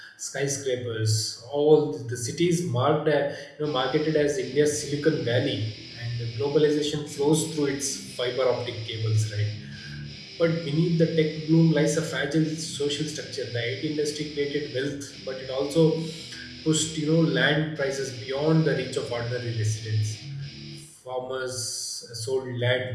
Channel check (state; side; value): identical; both; correlation 1.00